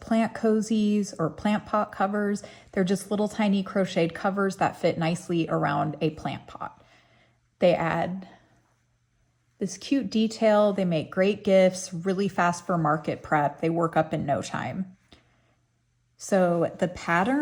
cozies or plant pot covers. They're just little tiny crocheted covers that fit nicely around a plant pot. They add this cute detail. They make great gifts, really fast for market prep. They work up in no time. So the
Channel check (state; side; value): identical; both; correlation 1.00